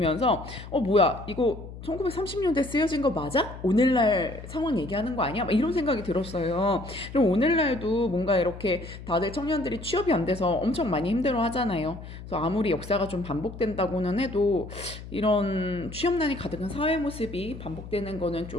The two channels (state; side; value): noise; left; hum, 13 dB below the sound